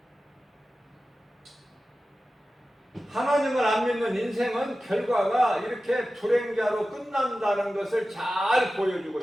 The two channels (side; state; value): both; normal; correlation 0.94